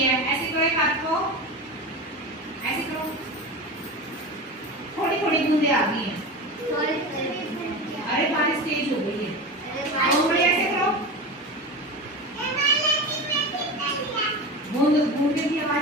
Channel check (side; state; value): both; normal; correlation 0.26